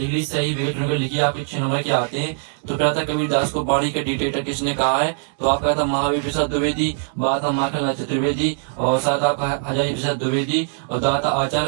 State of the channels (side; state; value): left; silent; digital silence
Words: सही वेट नंबर लिखिए, आपके 6 नंबर के आते हैं। तो पहला था कबीर दास को वाणी का डिक्टेटर किसने कहा है, तो आपका था महावीर प्रसाद द्विवेदी, बात था माखनलाल चतुर्वेदी, और साथ आपका हजारी प्रसाद द्विवेदी, और दाता